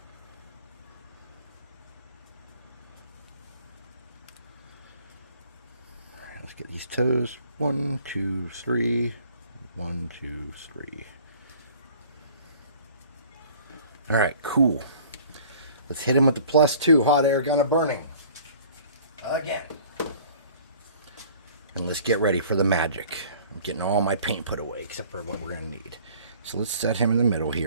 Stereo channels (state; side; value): inverted; both; correlation -0.51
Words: Let's get these toes. 1, 2, 3. 1, 2, 3. All right, cool. Let's hit him with the +2 hot air gun of burning. Again. And let's get ready for the magic. I'm getting all my paint put away except for what we're going to need. So let's set him in the middle